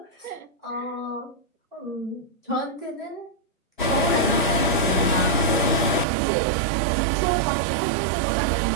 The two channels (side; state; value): left; drops out; at 6.1 s